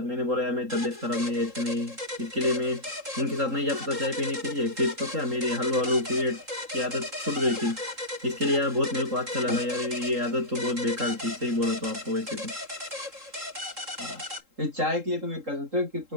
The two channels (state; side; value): late; left; 3.8 ms